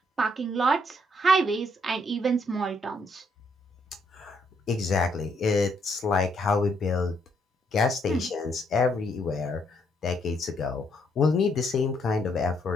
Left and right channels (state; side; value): normal; both; correlation 0.72